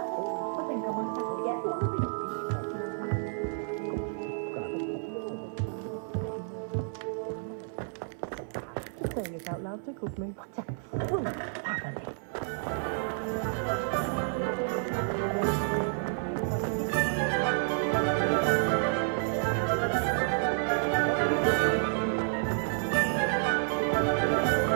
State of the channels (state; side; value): silent; left; digital silence